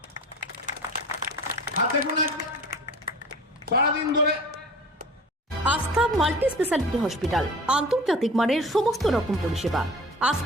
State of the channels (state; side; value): normal; both; correlation 0.41